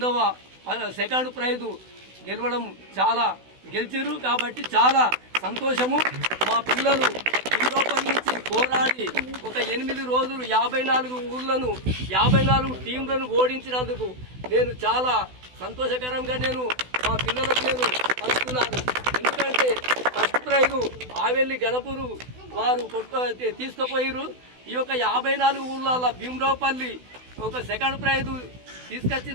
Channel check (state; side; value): late; left; 16 ms